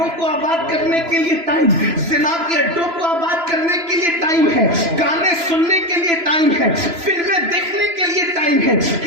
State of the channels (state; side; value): late; left; 3.0 ms